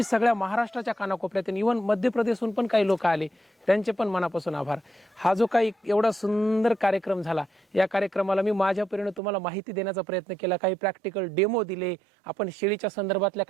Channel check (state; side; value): drops out; left; at 9.2 s